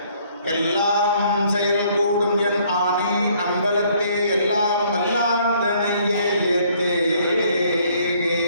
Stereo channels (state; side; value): inverted; both; correlation -0.63